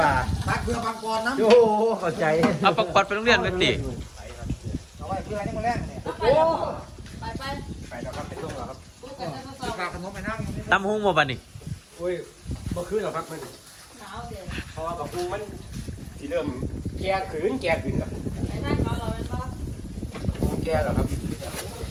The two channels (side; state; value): both; identical; correlation 1.00